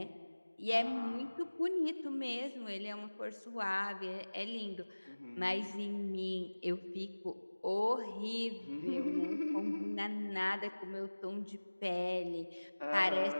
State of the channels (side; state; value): both; inverted; correlation -1.00